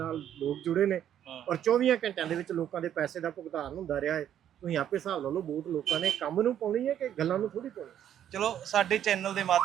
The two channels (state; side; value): quieter; left; 10.3 dB